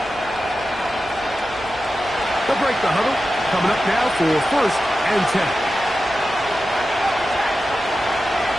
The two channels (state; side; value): noise; right; rumble, 21 dB below the sound